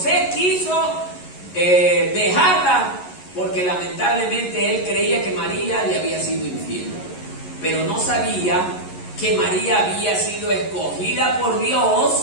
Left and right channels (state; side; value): late; right; 11 ms